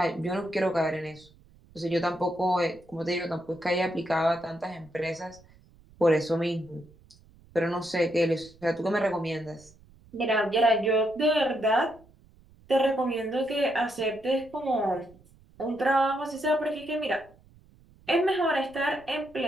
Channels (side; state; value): right; noise; rumble, 27 dB below the sound